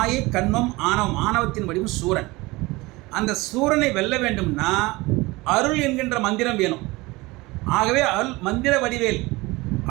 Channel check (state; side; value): quieter; left; 22.1 dB